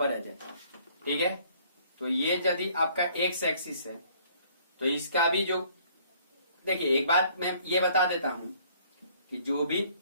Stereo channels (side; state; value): both; inverted; correlation -0.59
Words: आ जाए, ठीक है, तो ये यदि आपका एक्स एक्सिस है, तो इसका भी जो देखिए एक बात मैं ये बता देता हूं कि